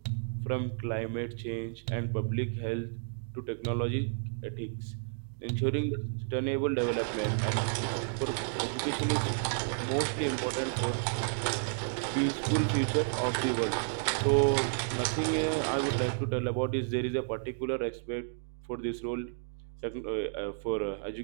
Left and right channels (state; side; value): silent; left; digital silence